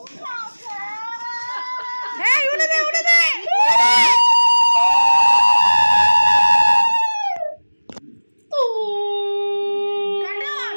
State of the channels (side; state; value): both; inverted; correlation -1.00